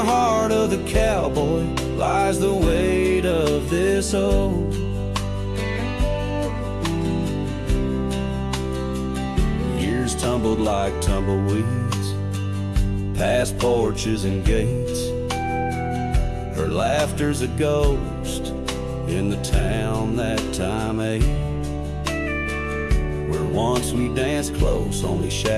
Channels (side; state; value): both; identical; correlation 1.00